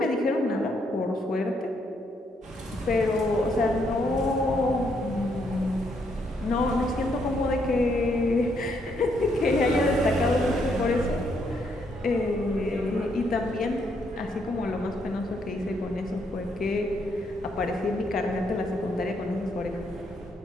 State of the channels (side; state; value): both; normal; correlation 0.74